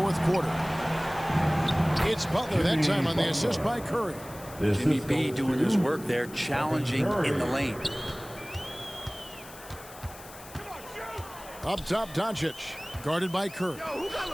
quarter. It's Butler that time on the assist by Curry. Jimmy B doing his work there, challenging in the lane. Up top, Doncic, guarded by Curry.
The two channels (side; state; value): left; noise; hiss, 18 dB below the sound